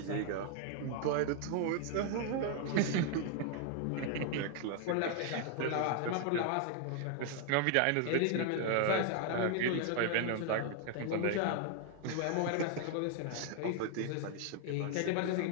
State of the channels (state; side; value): different; both; correlation 0.00